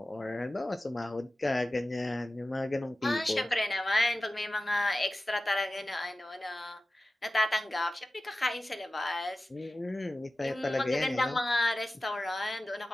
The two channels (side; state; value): both; normal; correlation 0.96